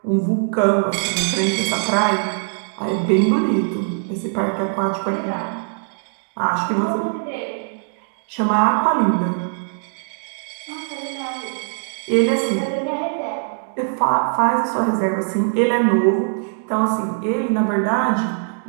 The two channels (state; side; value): silent; left; digital silence